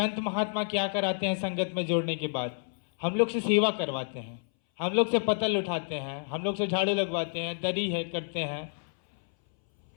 महात्मा क्या कराते हैं? संगत में जोड़ने के बाद हम लोग से सेवा करवाते हैं, हम लोग से पतल उठाते हैं, हम लोग से झाड़ू लगवाते हैं, दरी है करते हैं,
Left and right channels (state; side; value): silent; right; 58 dB below the other